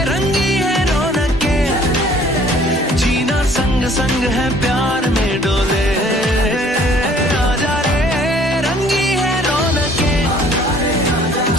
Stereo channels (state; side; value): normal; both; correlation 0.56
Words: रंगी है रौनके, जीना संग संग है प्यार में डोले। आजा रे रंगी है रौनके,